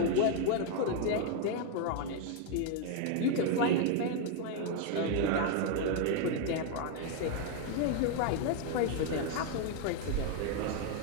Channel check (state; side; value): different; both; correlation 0.00